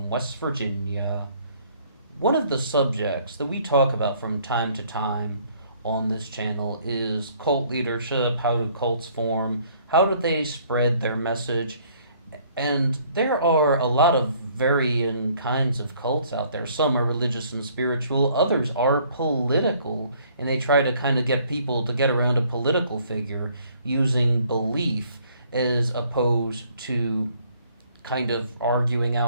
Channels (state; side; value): inverted; both; correlation -0.61